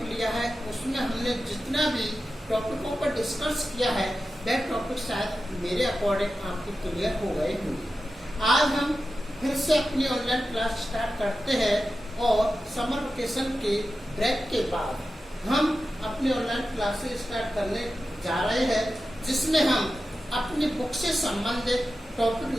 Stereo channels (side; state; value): both; normal; correlation 0.92